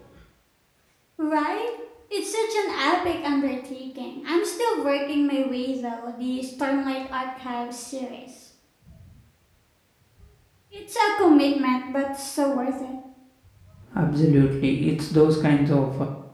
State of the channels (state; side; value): identical; both; correlation 1.00